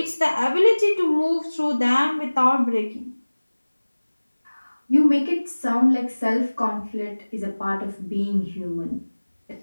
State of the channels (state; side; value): inverted; both; correlation -1.00